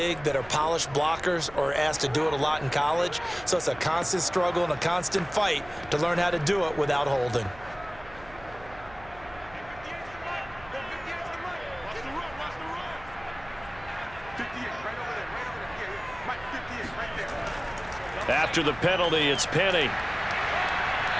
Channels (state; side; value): noise; right; hum, 20 dB below the sound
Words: that are polished blockers or asked to do it a lot in college. So it's a constant struggle and a constant fight to learn how to do it without holding. After the penalty, it's Penny.